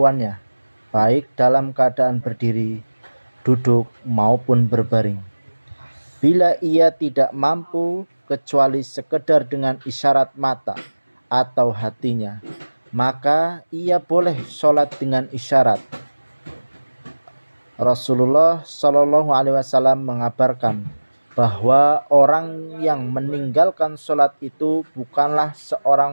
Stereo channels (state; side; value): inverted; both; correlation -1.00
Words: baik dalam keadaan berdiri, duduk, maupun berbaring. Bila ia tidak mampu kecuali sekedar dengan isyarat mata atau hatinya, maka ia boleh sholat dengan isyarat. Rasulullah Shallallahu Alaihi Wasallam mengabarkan bahwa orang yang meninggalkan sholat itu bukanlah